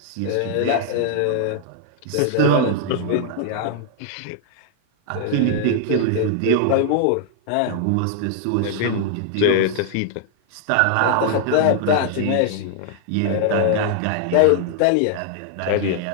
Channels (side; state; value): both; different; correlation -0.01